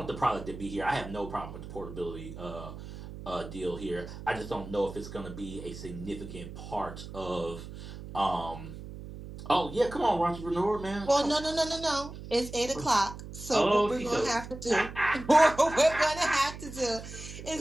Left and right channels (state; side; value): noise; right; hum, 12 dB below the sound